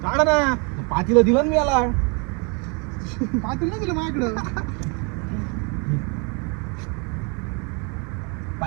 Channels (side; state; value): left; quieter; 33.5 dB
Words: काढा ना. पातीला दिलं ना मी याला. पाटील नाही दिलं माझ्याकडं.